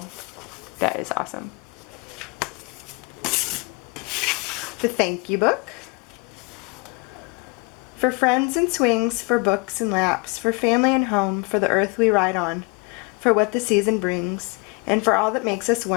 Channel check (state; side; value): quieter; right; 30.1 dB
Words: That is awesome. The thank you book. For friends and swings, for books and laps, for family and home, for the earth we ride on, for what the season brings, and for all that makes us